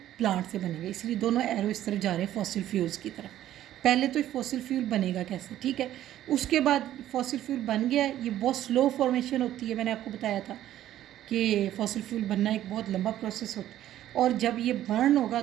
प्लांट से बनेगा, इसलिए दोनों एरो इस तरफ जा रहे हैं फॉसिल फ्यूल्स की तरफ। पहले तो फॉसिल फ्यूल बनेगा कैसे, ठीक है, उसके बाद फॉसिल फ्यूल बन गया, ये बहुत स्लो फॉर्मेशन होती है, मैंने आपको बताया था कि फॉसिल फ्यूल बनना एक बहुत लंबा प्रोसेस होता है। और जब ये बर्न होगा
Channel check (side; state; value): left; quieter; 12.6 dB